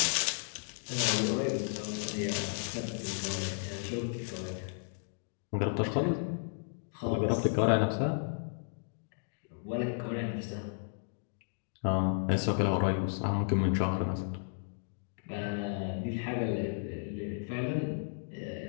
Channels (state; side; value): silent; right; digital silence